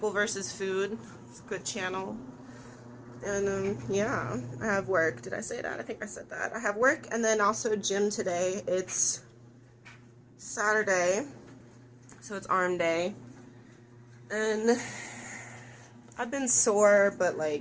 vs. Food. It's a good channel. And yeah, I have work. Did I say that? I think I said that. I have work, and then also gym today. It's Saturday, so it's arm day. And I've been sore, but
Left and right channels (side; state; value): both; identical; correlation 1.00